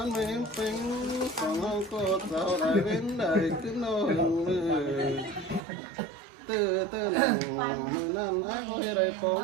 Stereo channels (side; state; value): left; drops out; at 5.6 s